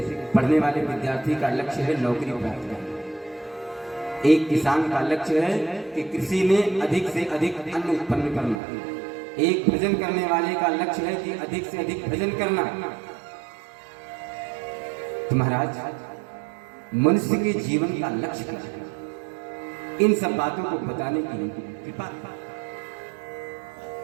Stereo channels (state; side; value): drops out; left; at 8.6 s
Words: पढ़ने वाले विद्यार्थी का लक्ष्य है नौकरी प्राप्त करना, एक किसान का लक्ष्य है कि कृषि में अधिक से अधिक अन्न उत्पन्न करना, एक भजन करने वाले का लक्ष्य है कि अधिक से अधिक भजन करना। तो महाराज, मनुष्य के जीवन का लक्ष्य क्या है? इन सब बातों को बताने की कृपा।